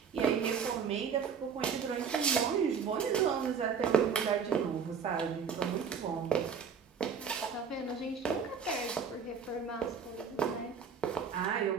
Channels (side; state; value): left; quieter; 6.4 dB